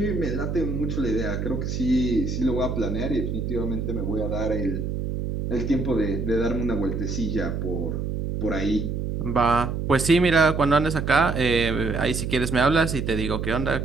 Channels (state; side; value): noise; right; hum, 3 dB below the sound